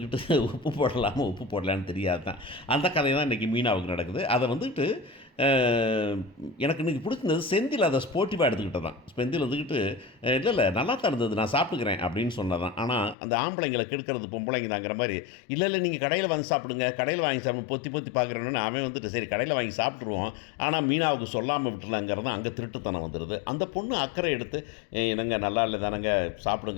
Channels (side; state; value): right; drops out; at 13.2 s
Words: உப்பு போடலான்னு தெரியாது தான். அந்த கதை தான் இன்றைக்கி மீனாவுக்கு நடக்குது. அதை வந்துட்டு எனக்கு இன்றைக்கி பிடிச்சிருந்தது செந்தில் அதை ஸ்போர்ட்டிவாக எடுத்துக்கிட்டது தான். செந்தில் வந்துக்கிட்டு இல்லை நல்லா தான் இருந்தது, நான் சாப்பிட்டுக்கிறேன் அப்படின்னு சொன்னதான். ஆனால் அந்த ஆம்பளைங்களை கெடுக்கிறது பொம்பளைங்க தாங்கிற மாதிரி இல்லை நீங்கள் கடையில் வாங்கி சாப்பிடுங்க, கடையில் வாங்கி சாப்பிடு பொத்தி பார்க்குறேன்னு அவன் வந்துட்டு சரி கடையில் வாங்கி சாப்பிட்ருவோம், ஆனால் மீனாவுக்கு சொல்லாமல் விட்டுலாங்கிறது அங்கே திருட்டுத்தனம் வந்துடுது. அந்த பொண்ணு அக்கறை எடுத்து என்னங்க நல்லா இல்லை தானங்க